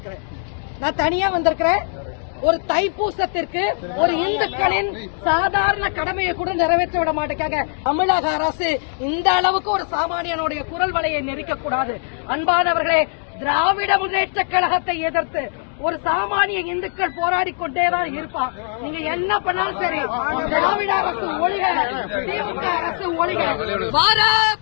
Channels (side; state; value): right; silent; digital silence